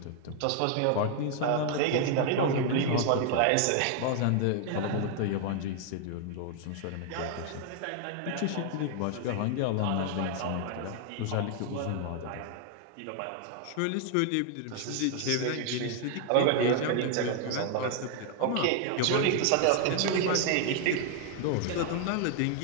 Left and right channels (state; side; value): different; both; correlation 0.00